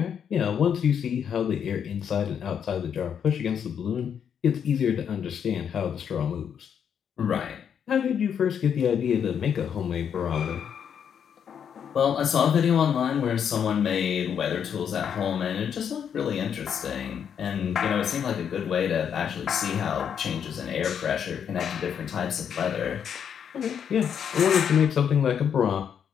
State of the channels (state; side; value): quieter; right; 8.0 dB